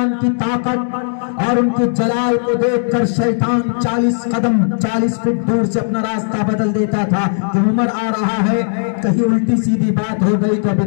کی طاقت اور ان کی جلال کو دیکھ کر شیطان 40 فٹ دور سے اپنا راستہ بدل دیتا تھا کہ عمر آ رہا ہے، کہیں الٹی سیدھی بات ہو گئی تو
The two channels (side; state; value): right; silent; digital silence